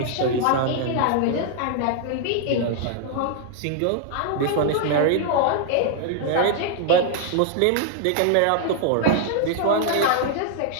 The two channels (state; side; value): different; both; correlation 0.00